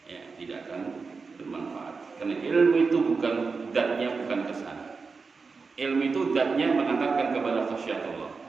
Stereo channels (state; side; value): quieter; left; 4.6 dB